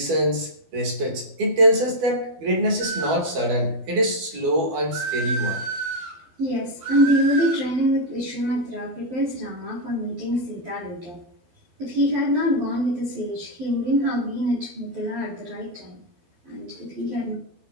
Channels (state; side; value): late; left; 12 ms